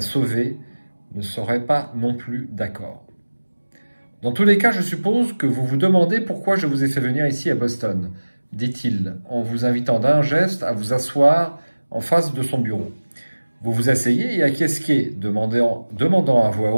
ne serait pas non plus d'accord. Dans tous les cas, je suppose que vous vous demandez pourquoi je vous ai fait venir ici à Boston, dit-il, en vous invitant d'un geste à vous asseoir en face de son bureau. Vous vous asseyez et acquiesquez, demandant à voix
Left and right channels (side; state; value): both; inverted; correlation -1.00